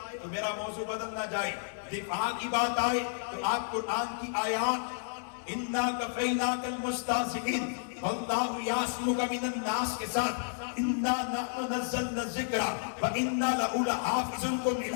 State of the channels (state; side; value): silent; right; digital silence